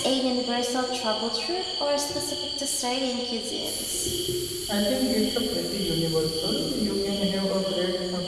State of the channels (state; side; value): noise; right; rumble, 22 dB below the sound